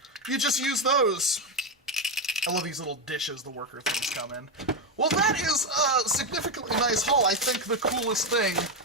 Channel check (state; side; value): normal; both; correlation 0.09